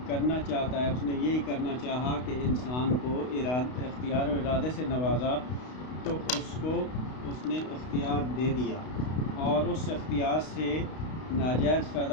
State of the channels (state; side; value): late; right; 32 ms